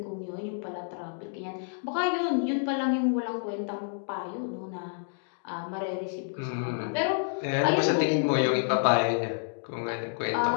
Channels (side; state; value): right; silent; digital silence